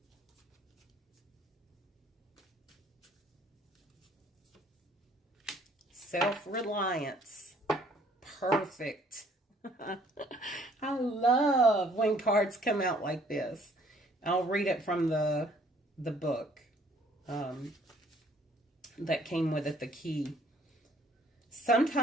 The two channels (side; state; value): both; normal; correlation 0.60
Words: Self-reliance. Perfect. I love when cards come out like this. I'll read it from the book that came with it, the key.